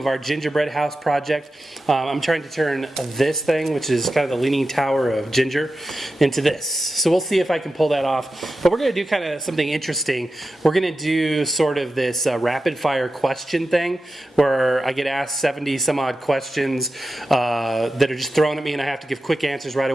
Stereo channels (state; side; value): normal; both; correlation 0.92